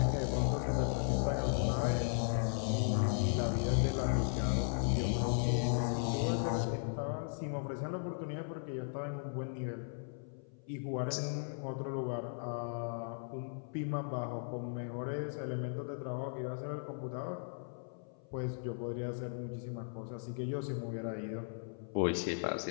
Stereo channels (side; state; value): right; silent; 53 dB below the other